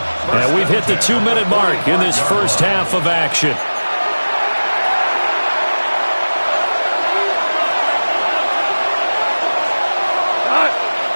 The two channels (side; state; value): both; inverted; correlation -1.00